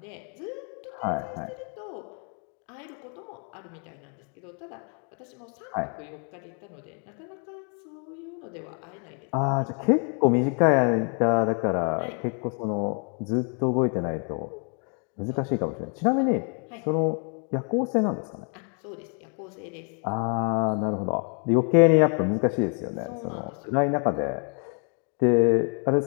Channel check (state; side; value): quieter; right; 39.9 dB